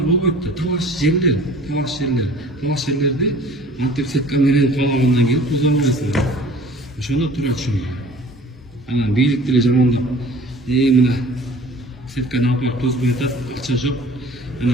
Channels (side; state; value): both; normal; correlation 0.47